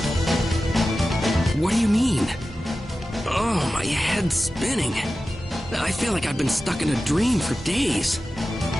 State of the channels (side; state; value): both; normal; correlation 0.94